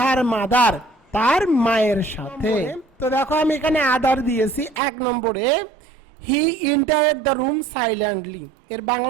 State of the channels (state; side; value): drops out; left; at 4.8 s